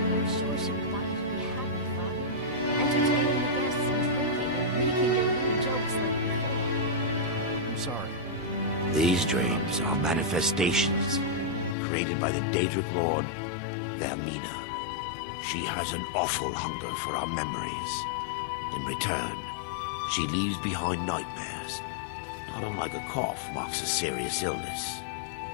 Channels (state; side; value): drops out; right; at 11.8 s